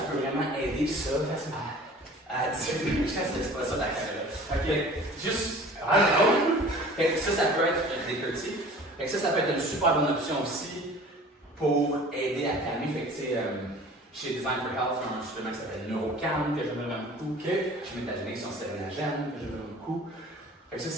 peut vraiment aider ça à diminuer. C'est pas ça la caméra. Ok, juste. Fait que ça peut être des curtis. Fait que ça peut être une super bonne option aussi pour aider à calmer. Fait que chez Design for Health, il y a un supplément qui s'appelle Neurocalm que j'aime vraiment beaucoup. Chez Métagénique, c'est un sérénagène que j'aime vraiment beaucoup. Fait que ça,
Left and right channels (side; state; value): both; normal; correlation 0.45